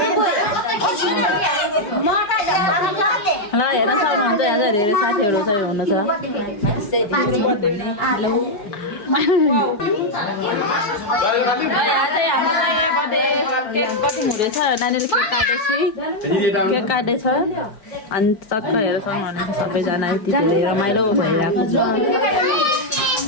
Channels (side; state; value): right; late; 4.5 ms